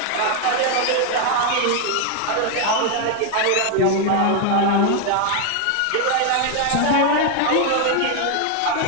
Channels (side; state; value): both; different; correlation 0.01